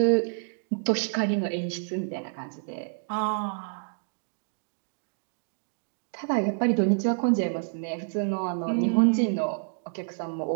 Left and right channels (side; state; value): left; silent; digital silence